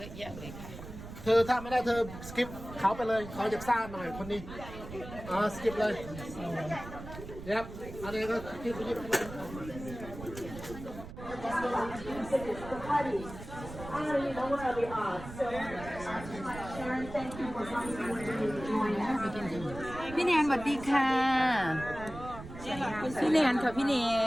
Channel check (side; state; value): right; noise; rumble, 12 dB below the sound